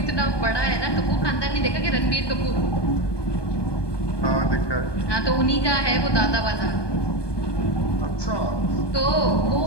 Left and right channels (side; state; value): right; late; 1.2 ms